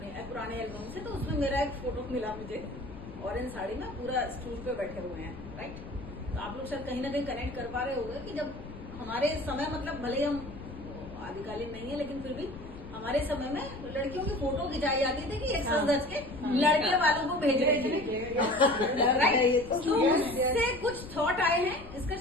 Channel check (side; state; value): left; noise; rumble, 14 dB below the sound